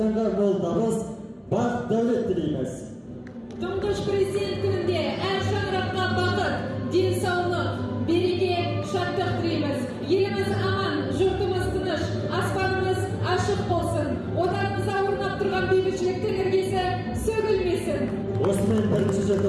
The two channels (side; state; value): both; identical; correlation 1.00